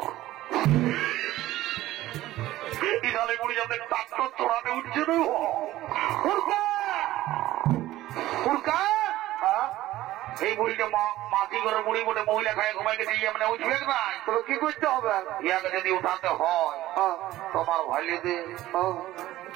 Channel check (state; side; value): quieter; left; 15.5 dB